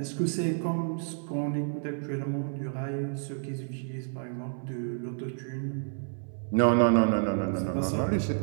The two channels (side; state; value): left; silent; 58 dB below the other